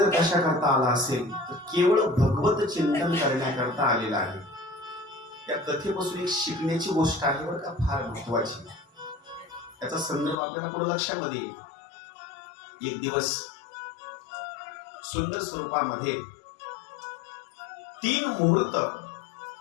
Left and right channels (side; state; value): right; drops out; at 10.4 s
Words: कशा करता आला असेल तर केवळ भगवत चिंतन करण्याकरता आलेला आहे. या कथेपासून एक शिकण्याची गोष्ट आहे बरं का, फार महत्वाची. त्याचा संदर्भ आपल्याला पुढे लक्षामध्ये येईल. एक दिवस सुंदर स्वरूपामध्ये 3 मुहूर्त,